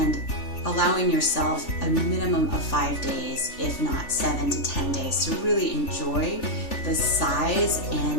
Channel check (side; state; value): right; late; 3.4 ms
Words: allowing yourself a minimum of 5 days, if not 7 to 10 days, to really enjoy the size